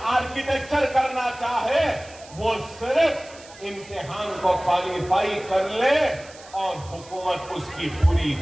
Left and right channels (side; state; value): right; noise; hiss, 21 dB below the sound